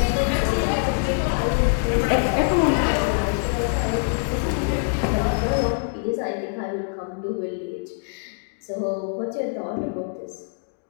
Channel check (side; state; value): right; silent; digital silence